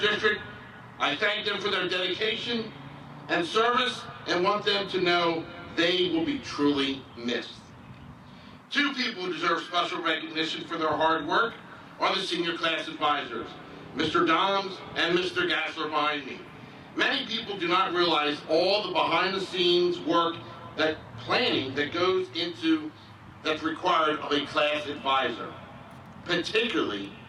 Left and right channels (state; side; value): identical; both; correlation 1.00